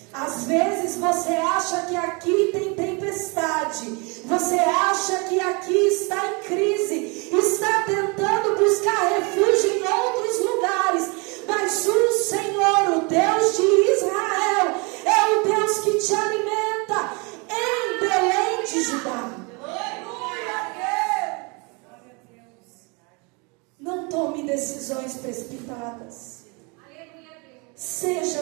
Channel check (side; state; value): left; quieter; 30.7 dB